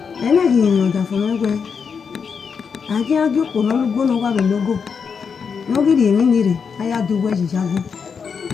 ena gi no da fun egwe aje ajo ko no lugo no wa be logo no gi ri mi ni re aya du we ji jago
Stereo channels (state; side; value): quieter; right; 6.1 dB